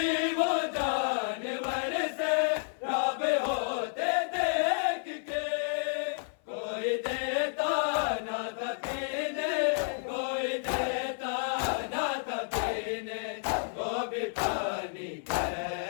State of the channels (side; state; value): right; silent; 57 dB below the other